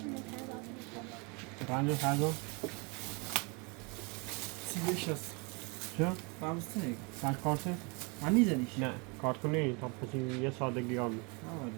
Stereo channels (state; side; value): quieter; left; 31.1 dB